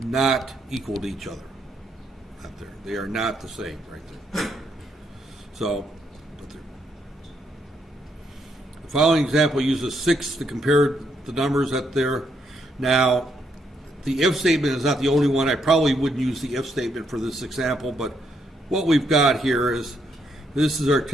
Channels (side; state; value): both; normal; correlation 0.75